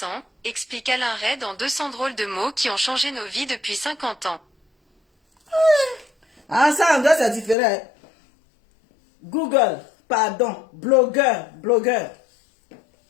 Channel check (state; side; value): drops out; right; at 7.6 s